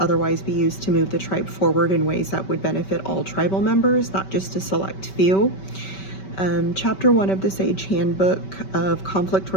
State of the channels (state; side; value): late; right; 5.2 ms